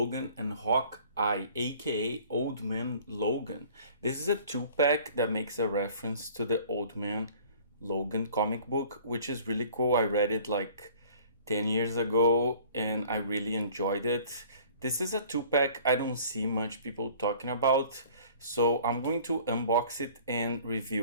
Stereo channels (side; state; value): both; inverted; correlation -0.51